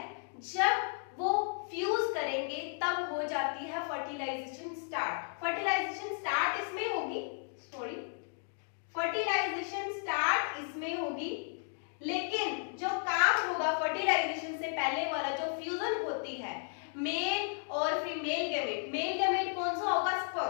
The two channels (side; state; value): right; silent; 55 dB below the other